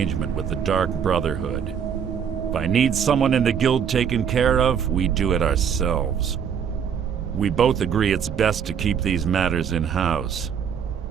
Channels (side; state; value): left; quieter; 7.7 dB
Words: with the Dark Brotherhood. If I need someone in the guild taken care of, we do it ourselves. We both agree it's best to keep these matters in-house.